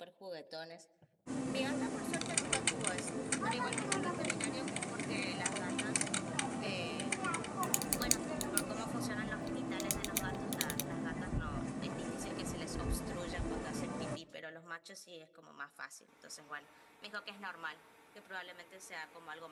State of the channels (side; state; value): both; identical; correlation 1.00